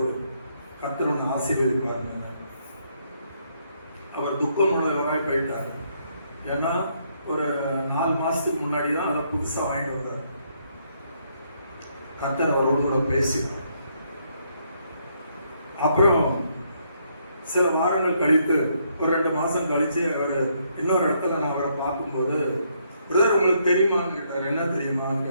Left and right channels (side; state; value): both; inverted; correlation -0.73